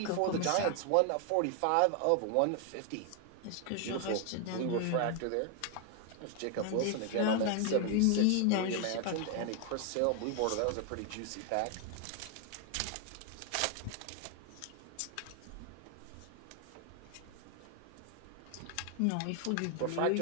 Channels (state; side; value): different; both; correlation 0.00